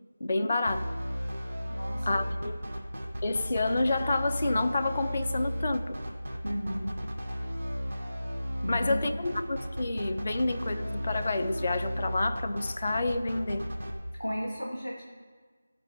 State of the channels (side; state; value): both; inverted; correlation -0.93